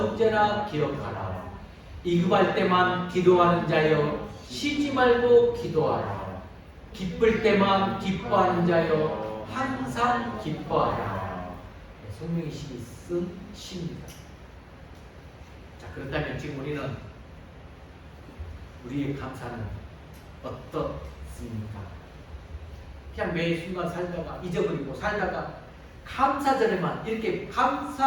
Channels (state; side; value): identical; both; correlation 1.00